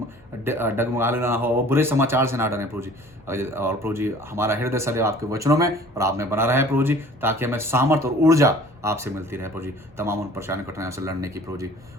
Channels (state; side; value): normal; both; correlation 0.49